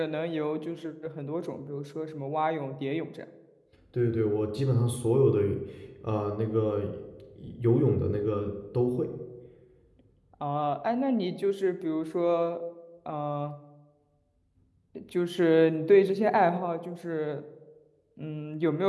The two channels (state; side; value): identical; both; correlation 1.00